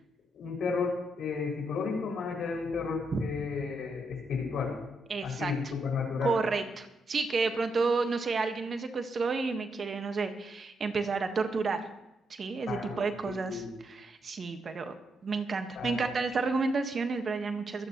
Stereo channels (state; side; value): normal; both; correlation 0.80